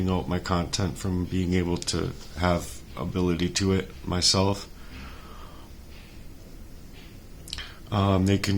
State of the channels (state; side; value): identical; both; correlation 1.00